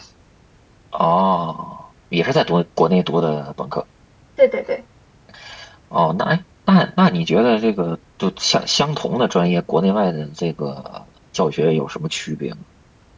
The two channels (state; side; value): identical; both; correlation 1.00